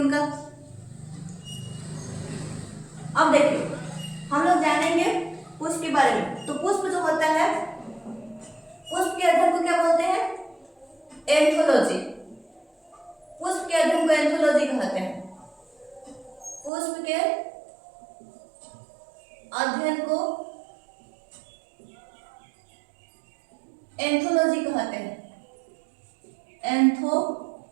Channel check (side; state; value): left; drops out; at 16.7 s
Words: अब देखिए हम लोग जानेंगे पुष्प के बारे में। तो पुष्प जो होता है, पुष्प के अध्ययन को क्या बोलते हैं, एंथोलॉजी। पुष्प के अध्ययन को एंथोलॉजी कहते हैं। पुष्प के अध्ययन को एंथोलॉजी कहते हैं, एंथोलॉजी